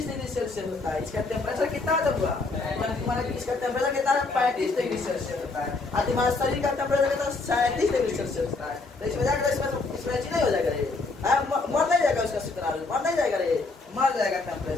डिग्री सेल्सियस होता है। इसका टेम्परेचर कितना हुआ? इसका टेम्परेचर कितना है? 35 डिग्री सेल्सियस होता है। और तुम्हारे शरीर का टेम्परेचर कितना? 37 डिग्री सेल्सियस होता है। तो इसमें जाकर इसमें नहीं हो जाएगा रे, मर नहीं जाएगा उसका शुक्राणु, मर नहीं जाएगा रे, मर जाएगा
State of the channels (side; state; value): right; quieter; 3.6 dB